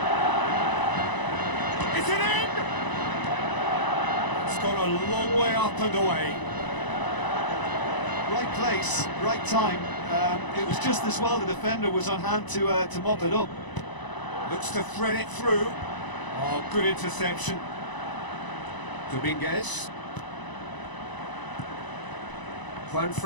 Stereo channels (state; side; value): late; right; 1.0 ms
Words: Is it in? It's gone a long way up and away. Right place, right time. It was just as well the defender was on hand to mop it up. Looks to thread it through. Oh, good interception. Dominguez.